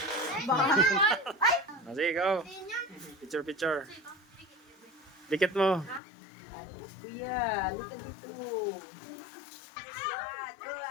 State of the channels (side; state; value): right; drops out; at 6.0 s